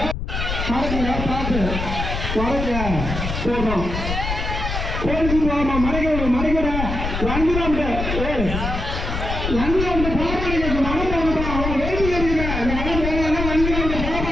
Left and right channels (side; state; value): left; noise; rumble, 4 dB below the sound